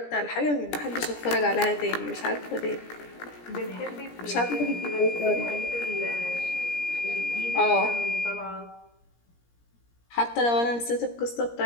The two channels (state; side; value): late; right; 17 ms